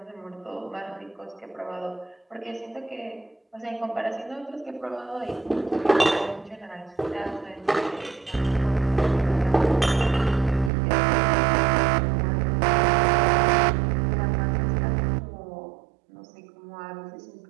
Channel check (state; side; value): drops out; left; at 10.7 s